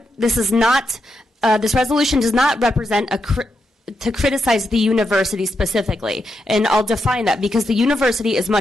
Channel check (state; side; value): normal; both; correlation 0.84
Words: does not represent to criticize the university specifically, and I'll define that because the university is